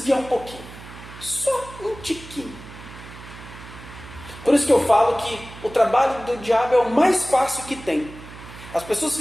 um pouquinho. Só um tiquinho. Por isso que eu falo que o trabalho do diabo é o mais fácil que tem. As pessoas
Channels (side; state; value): right; noise; hum, 16 dB below the sound